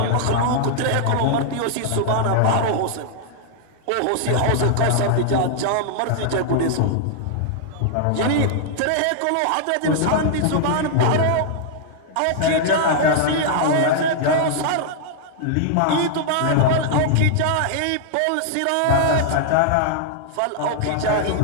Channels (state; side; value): different; both; correlation -0.01